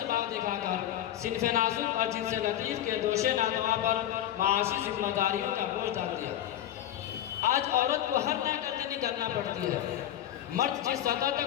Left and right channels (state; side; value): quieter; right; 11.8 dB